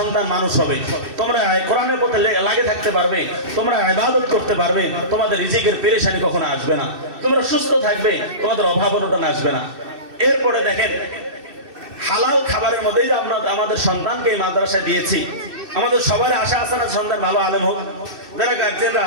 মানুষ হবে, তোমরা কোরআনের পথে লাগে থাকতে পারবে, তোমরা ইবাদত করতে পারবে, তোমাদের রিজিকের পেরেশানি কখনো আসবে না, তোমরা সুস্থ থাকবে, তোমাদের অভাব অনটন আসবে না। এরপরে দেখেন, হালাল খাবারের মধ্যেই যে আমরা আমাদের সন্তানকে এই মাদ্রাসায় দিয়েছি, আমাদের সবার আশা আছে না সন্তান ভালো আলেম হোক? যারা গার্জিয়ানরা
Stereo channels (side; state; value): left; late; 2.6 ms